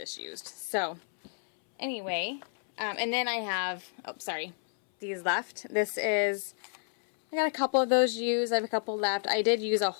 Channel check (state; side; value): silent; right; 58 dB below the other